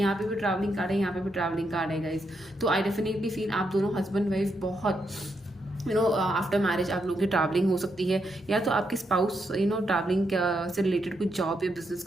पे भी ट्रैवलिंग कार्ड है, यहाँ पे भी ट्रैवलिंग कार्ड है गाइस। तो आई डेफिनेटली फील आप दोनों हस्बैंड वाइफ बहुत आफ्टर मैरिज आप लोगों की ट्रैवलिंग हो सकती है, या तो आपके स्पाउस ट्रैवलिंग से रिलेटेड कुछ जॉब या बिजनेस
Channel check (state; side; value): normal; both; correlation 0.80